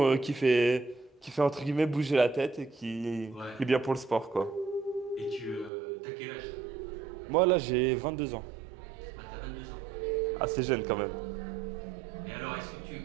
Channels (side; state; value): left; drops out; at 5.7 s